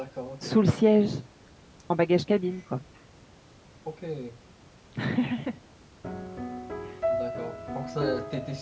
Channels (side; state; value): both; identical; correlation 1.00